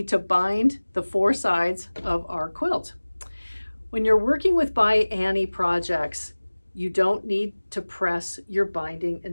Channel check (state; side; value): inverted; both; correlation -1.00